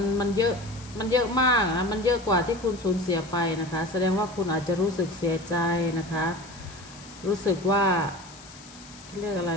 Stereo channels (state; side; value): noise; left; hiss, 20 dB below the sound